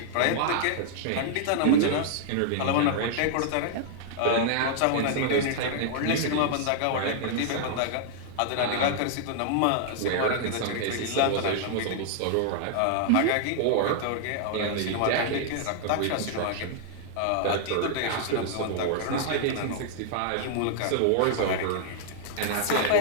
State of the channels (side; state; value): both; different; correlation -0.01